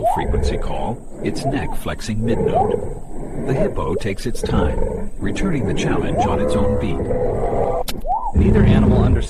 call, its neck flexing mid-note. The hippo takes its time, returning the challenge on its own beat. Neither animal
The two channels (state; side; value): identical; both; correlation 1.00